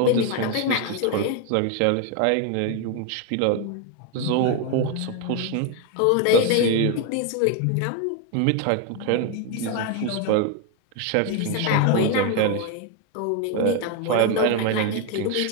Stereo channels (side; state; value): both; different; correlation 0.01